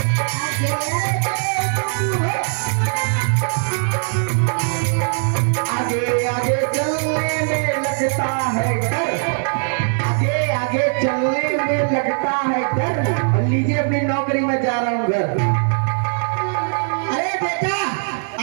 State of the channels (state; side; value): silent; left; 66 dB below the other